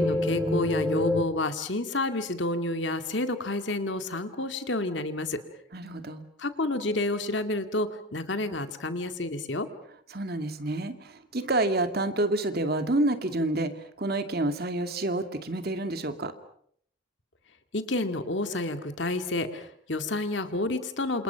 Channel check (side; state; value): both; normal; correlation 0.32